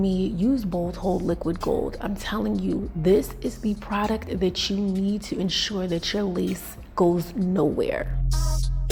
use Bold Hold Liquid Gold. I'm telling you, this is the product that you need to ensure that your lace goes nowhere.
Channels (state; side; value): identical; both; correlation 1.00